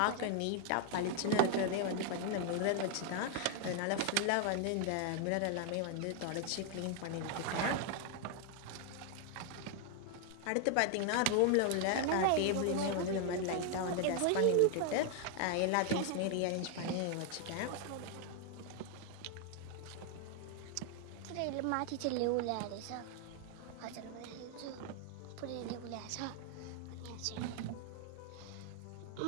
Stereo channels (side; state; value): both; different; correlation 0.00